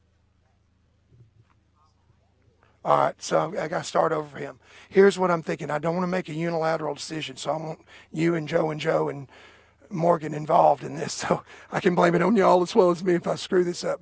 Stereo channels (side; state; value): both; identical; correlation 1.00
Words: All right, so I got to start over for him. Here's what I'm thinking. I don't want to make a unilateral decision, so I want you and Joe and Morgan involved in this, so I can blame it on y'all as well as me if I screw this up.